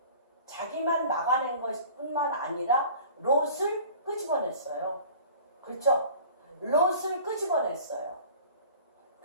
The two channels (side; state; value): both; inverted; correlation -0.45